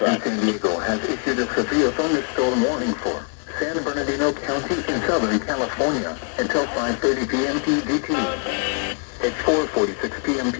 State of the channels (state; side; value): quieter; right; 37.0 dB